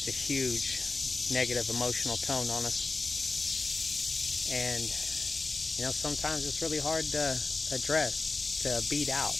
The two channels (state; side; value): quieter; right; 3.7 dB